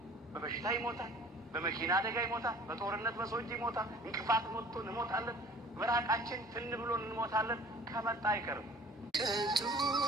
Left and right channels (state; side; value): normal; both; correlation 0.48